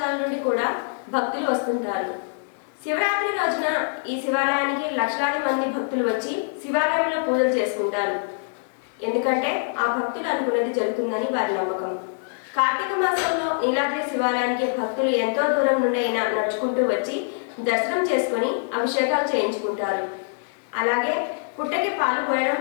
నుండి కూడా భక్తులు వస్తుంటారు. శివరాత్రి రోజున ఈ శివాలయానికి లక్షలాది మంది భక్తులు వచ్చి శివాలయంలో పూజలు చేసుకుంటారు. ఎందుకంటే ఆ భక్తులు అనుకున్నది జరుగుతుందని వారి నమ్మకం. కార్తీక మాసంలో నీలాద్రి శివాలయానికి భక్తులు ఎంతో దూరం నుండి అయినా నడుచుకుంటూ వచ్చి దర్శనం చేసుకుని అభిషేకాలు చేయించుకుంటారు. అలాగే పుట్టకి పాలు పోయడం,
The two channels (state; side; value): silent; right; digital silence